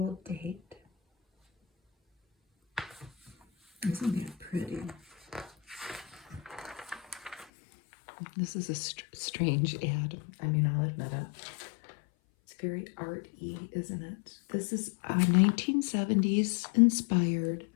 Date. Isn't that pretty? This is a strange ad. I mean, I'll admit it. It's very art-y, isn't it? This is a 1970s inspired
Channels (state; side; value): drops out; right; at 7.5 s